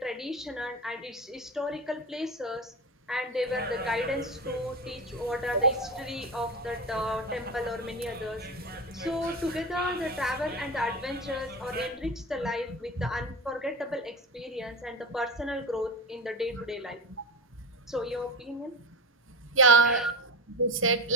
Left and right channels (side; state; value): both; normal; correlation 0.21